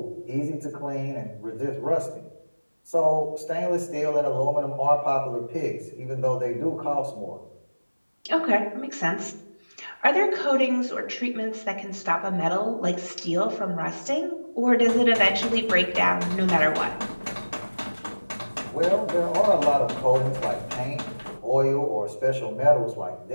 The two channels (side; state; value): both; inverted; correlation -1.00